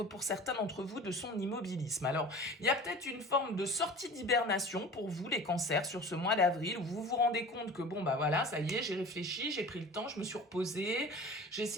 pour certains d'entre vous de son immobilisme. Alors, il y a peut-être une forme de sortie d'hibernation pour vous, les cancers, sur ce mois d'avril, où vous vous rendez compte que, bon, bah voilà, ça y est, j'ai réfléchi, j'ai pris le temps, je me suis reposée, j'ai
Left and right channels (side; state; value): both; normal; correlation 0.39